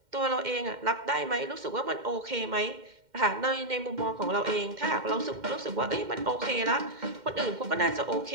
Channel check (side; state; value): left; late; 2.1 ms